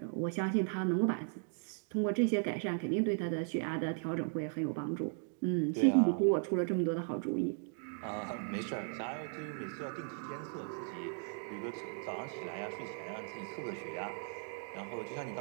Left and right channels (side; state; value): left; silent; 53 dB below the other